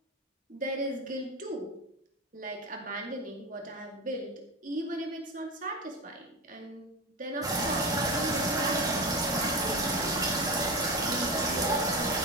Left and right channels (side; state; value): both; normal; correlation 0.21